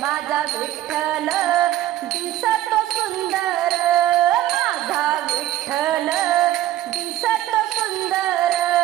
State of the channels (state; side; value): quieter; left; 14.0 dB